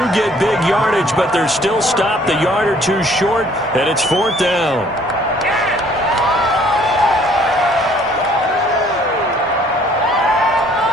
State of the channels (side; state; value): both; normal; correlation 0.59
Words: get big yardage, but they're still stopped a yard or two short, and it's fourth down.